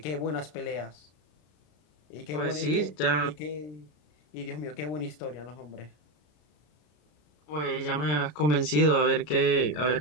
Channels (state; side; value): late; right; 33 ms